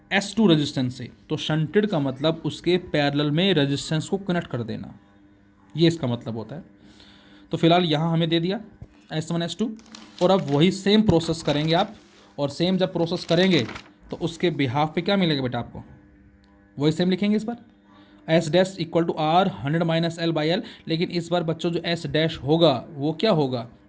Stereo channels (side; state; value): both; identical; correlation 1.00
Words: S2 रेजिस्टेंस से, तो शंटेड का मतलब उसके पैरेलल में रेजिस्टेंस को कनेक्ट कर देना, ये इसका मतलब होता है। तो फिलहाल यहाँ हमें दे दिया S1 S2, और अब वही सेम प्रोसेस करेंगे आप, और सेम जब प्रोसेस करेंगे तो उसके बिहाफ पे क्या मिलेगा बेटा आपको, वही सेम लिखेंगे इस बार S dash equal to R 100 minus L by L. लेकिन इस बार बच्चों जो एस डैश होगा वो क्या होगा,